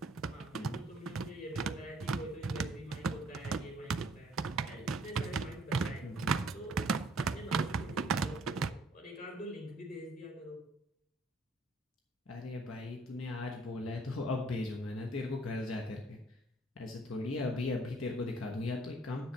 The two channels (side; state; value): both; normal; correlation 0.61